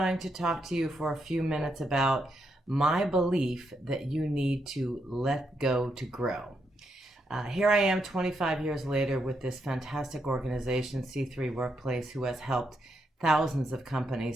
to talk to you for a few minutes about my belief that you need to let go to grow. Here I am 25 years later with this fantastic organization, C3 Workplace, who has helped thousands of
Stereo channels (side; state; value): both; normal; correlation 0.80